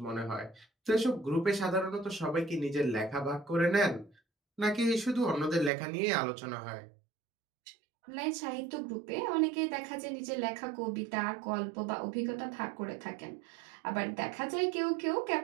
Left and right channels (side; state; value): left; drops out; at 5.7 s